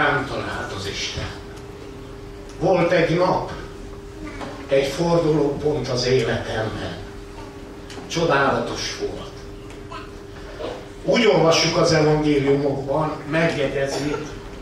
talált az Isten. Volt egy nap, egy fordulópont az életemben. Csodálatos volt. Úgy olvassuk az evangéliumokban, megjegyezi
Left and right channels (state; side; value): identical; both; correlation 1.00